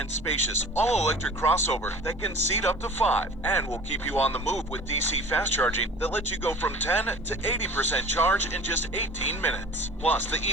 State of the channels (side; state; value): both; normal; correlation 0.42